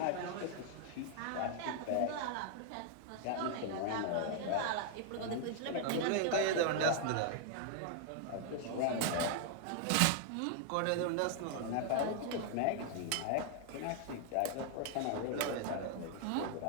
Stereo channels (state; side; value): different; both; correlation 0.00